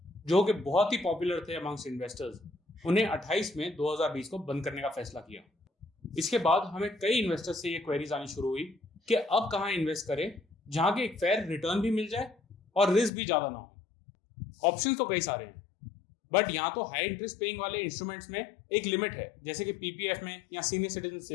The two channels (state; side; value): drops out; right; at 13.1 s